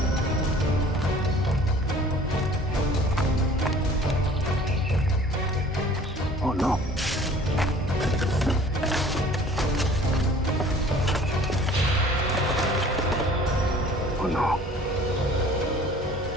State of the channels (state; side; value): normal; both; correlation 0.50